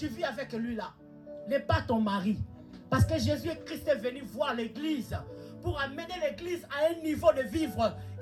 vis avec lui là, n'est pas ton mari. Parce que Jésus-Christ est venu voir l'église pour amener l'église à un niveau de vivre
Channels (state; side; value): identical; both; correlation 1.00